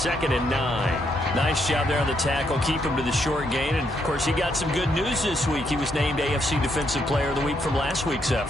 and 9. Nice job there on the tackle. Keep him to the short gain. And, of course, he got some good news this week. He was named AFC Defensive Player of the Week from last week's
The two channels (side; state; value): both; normal; correlation 0.76